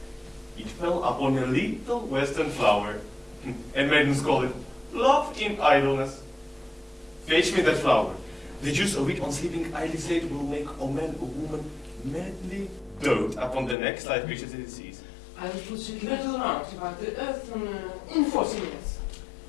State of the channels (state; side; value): drops out; right; at 13.8 s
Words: It fell upon a little western flower, and maidens call it love in idleness. Fetch me that flower. The juice of it on sleeping eyelids late will make a man or woman madly dote upon the next light creatures it sees. I'll put a little round about the earth in 40 minutes.